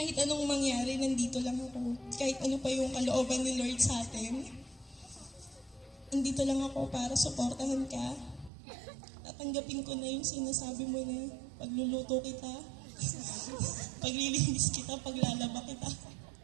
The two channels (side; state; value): left; drops out; at 8.5 s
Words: anong mangyari, nandito lang ako. Kahit ano pa yung kalooban ni Lord sa atin, nandito lang ako para suportahan ka. Tatanggapin ko na yung sinasabi mo na pagluluto kita, paglilinis kita, paglalaba kita.